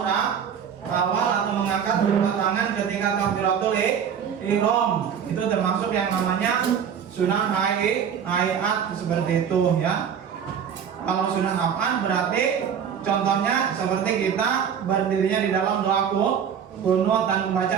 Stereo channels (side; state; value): left; quieter; 7.9 dB